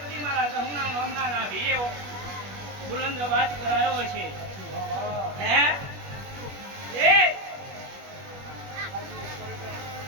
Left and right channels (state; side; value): late; left; 21 ms